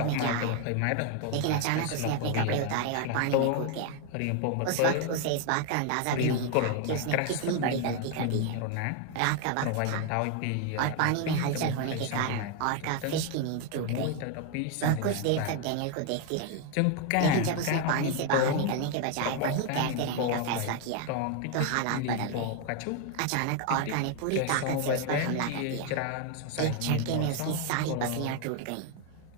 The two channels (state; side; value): different; both; correlation 0.01